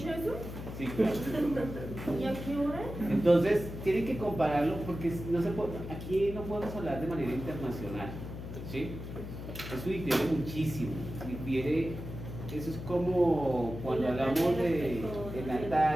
eso? Sí, claro. ¿Y a qué hora? Entonces, tienen que compararlo porque no se puede, aquí no podemos hablar de manera internacional, ¿sí? Eso difiere muchísimo, eso es como cuando hablamos de en la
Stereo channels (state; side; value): noise; left; hum, 9 dB below the sound